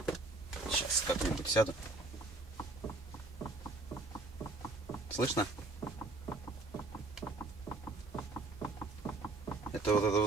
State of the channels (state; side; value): quieter; left; 3.3 dB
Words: Сейчас как-нибудь сяду. Слышно? Это вот этот